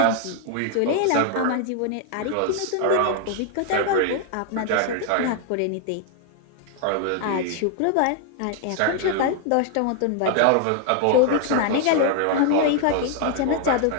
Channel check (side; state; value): both; different; correlation 0.00